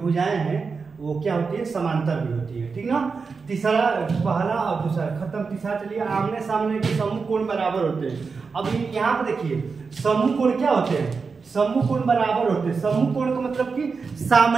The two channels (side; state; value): left; quieter; 4.9 dB